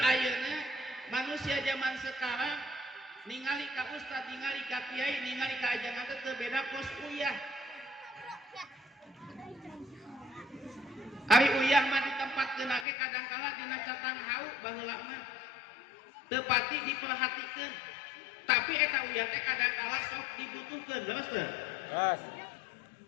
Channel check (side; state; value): right; drops out; at 12.9 s